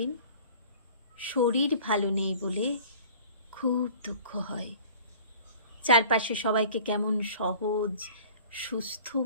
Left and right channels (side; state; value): both; inverted; correlation -0.46